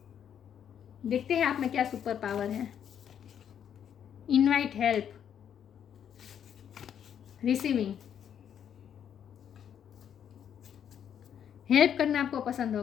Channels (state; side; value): quieter; right; 8.9 dB